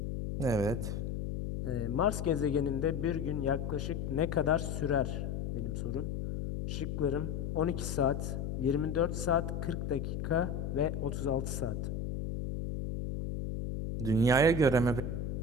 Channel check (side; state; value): left; noise; hum, 3 dB below the sound